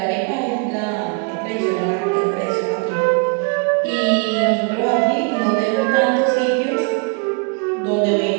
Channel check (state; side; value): quieter; left; 34.7 dB